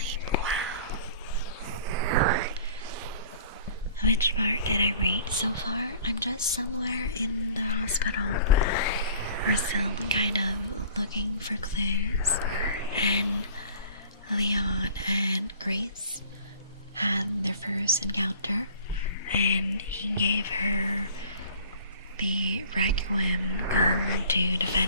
well. Which part did I read so far? I'm just somewhere in the hospital. We're still kind of looking for clues, and Leon and Grace had their first encounter, and he gave her the Requiem gun to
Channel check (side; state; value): both; inverted; correlation -0.48